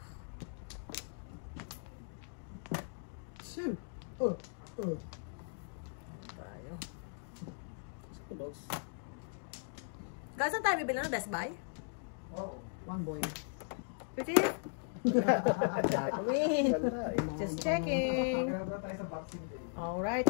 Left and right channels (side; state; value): right; silent; digital silence